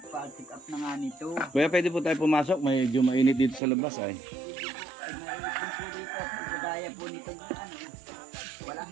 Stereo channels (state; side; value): drops out; left; at 3.6 s